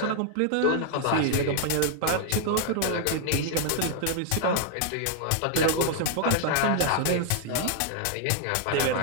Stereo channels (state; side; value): different; both; correlation 0.00